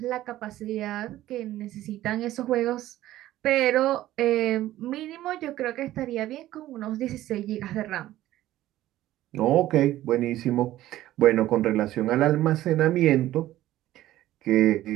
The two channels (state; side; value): quieter; left; 14.6 dB